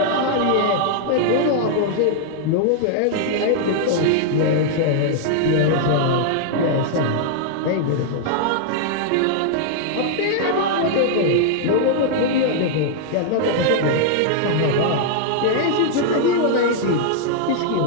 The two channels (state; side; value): different; both; correlation -0.01